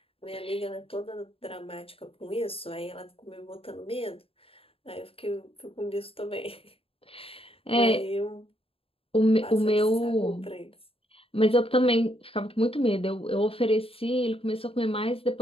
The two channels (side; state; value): right; late; 0.27 ms